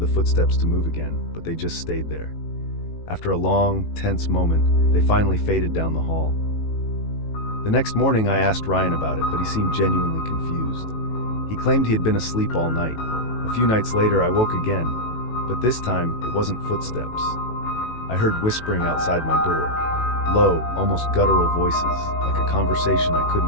footsteps to move again, but they just stayed there. After a long, tense moment, they finally faded down the hall. The next morning, I asked Ryan about it, but he seemed genuinely confused. He claimed he had been asleep all night. A few nights later, I woke again, but this time, it wasn't footsteps. I heard whispering outside my door. Low, almost guttural voices, like a conversation I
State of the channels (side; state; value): right; late; 18 ms